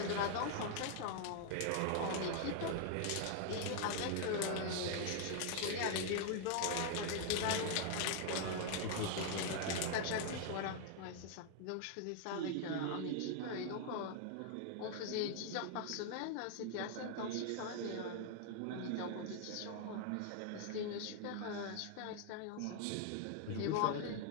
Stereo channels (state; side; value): different; both; correlation 0.00